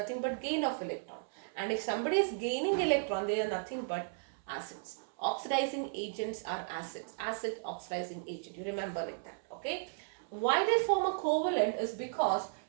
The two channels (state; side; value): silent; left; 55 dB below the other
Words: but gain of electron. And if somebody is gaining electron, they are nothing but acids. Oxidizing agents are acids. Acid oxidizing agent. You remember like that. Okay, why they form a covalent is because